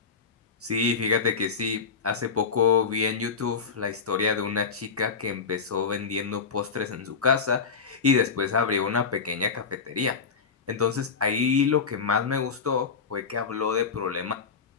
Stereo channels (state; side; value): quieter; right; 5.4 dB